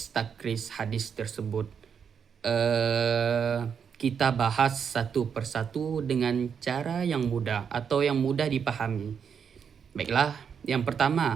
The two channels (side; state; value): left; quieter; 7.0 dB